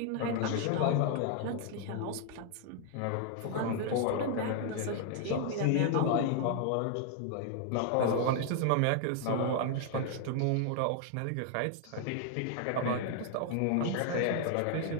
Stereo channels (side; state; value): both; different; correlation 0.00